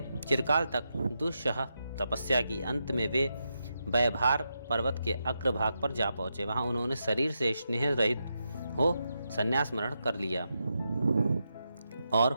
चिरकाल तक दुस्सह तपस्या की। अंत में वे वैभार पर्वत के अग्रभाग पर जा पहुंचे। वहां उन्होंने शरीर से स्नेह रहित हो संन्यास मरण कर लिया और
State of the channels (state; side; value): inverted; both; correlation -0.86